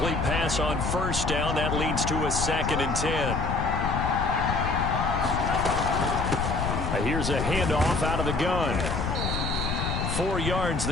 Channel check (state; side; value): noise; left; rumble, 2 dB below the sound